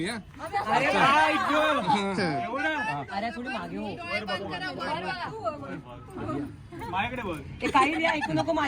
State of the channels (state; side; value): identical; both; correlation 1.00